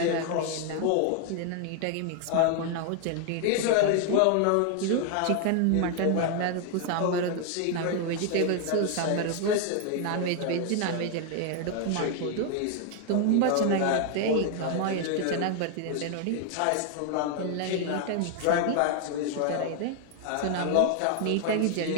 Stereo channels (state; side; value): different; both; correlation 0.00